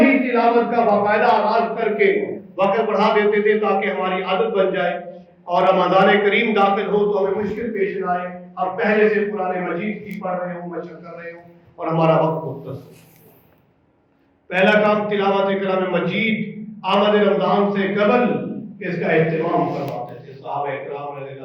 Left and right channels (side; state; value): both; identical; correlation 1.00